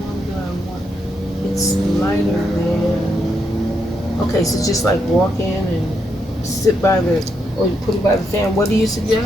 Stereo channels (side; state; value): both; normal; correlation 0.79